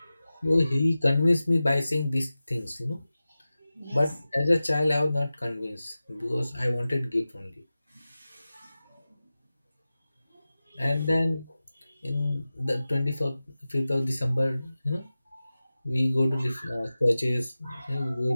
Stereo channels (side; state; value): both; inverted; correlation -0.96